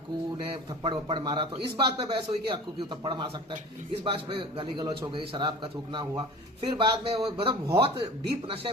ने थप्पड़ वप्पड़ मारा, तो इस बात पे बहस हुई कि अक्कू क्यों थप्पड़ मार सकता है, इस बात पे गाली गलौज हो गई, शराब का थूकना हुआ। फिर बाद में वो मतलब बहुत डीप नशे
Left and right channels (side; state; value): both; normal; correlation 0.40